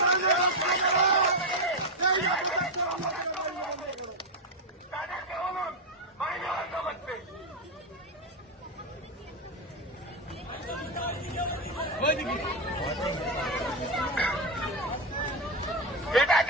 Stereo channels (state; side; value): normal; both; correlation 0.07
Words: তাদেরকে বলুন মাইনে বন্ধ করতে। এটা